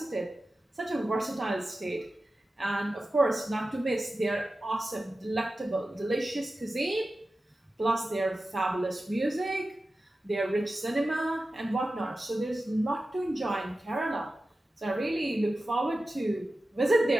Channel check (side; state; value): both; normal; correlation 0.94